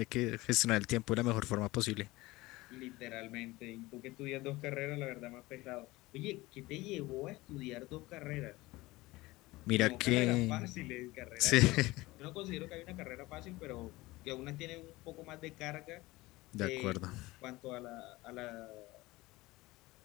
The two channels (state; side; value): quieter; right; 20.2 dB